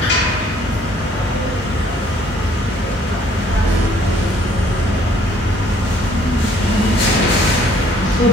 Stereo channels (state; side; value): normal; both; correlation 0.61